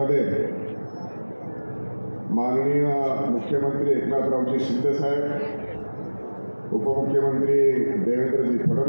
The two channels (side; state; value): both; inverted; correlation -1.00